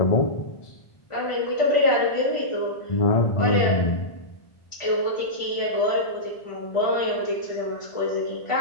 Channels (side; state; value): right; late; 1.4 ms